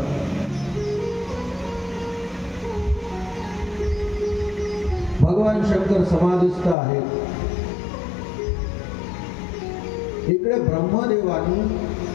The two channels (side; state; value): right; drops out; at 6.8 s